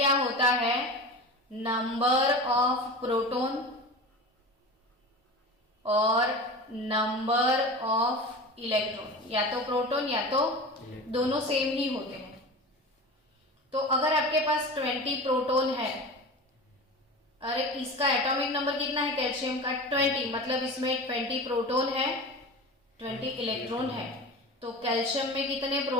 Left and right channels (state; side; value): normal; both; correlation 0.32